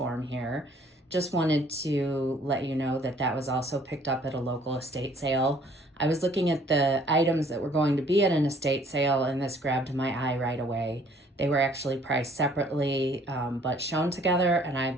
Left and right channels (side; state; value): both; normal; correlation 0.59